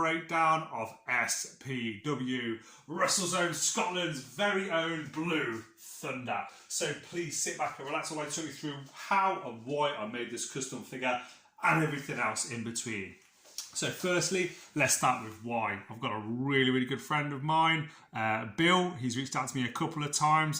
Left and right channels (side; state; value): both; identical; correlation 1.00